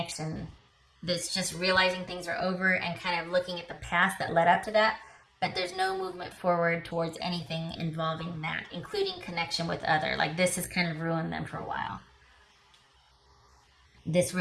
That's just realizing things are over and kind of looking at the past that led up to that, but there's no movement forward towards anything involving that, including connection with other. Like, this has kind of ruined them for a while. This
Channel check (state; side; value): identical; both; correlation 1.00